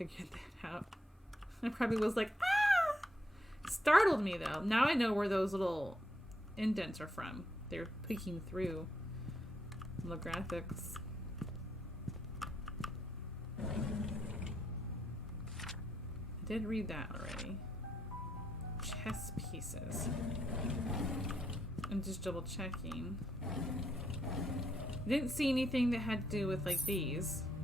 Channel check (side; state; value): both; normal; correlation 0.78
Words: that out. I probably was like, ah! Startled me though. Now I know where those little indents are from. They're peeking through the graphics. I did read that already. Chess pieces. I'm just double checking. I didn't see anything that had to do with like these.